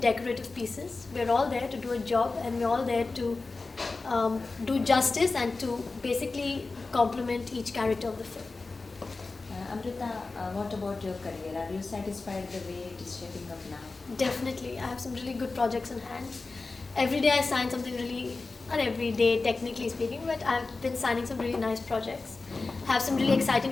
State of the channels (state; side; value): quieter; right; 3.8 dB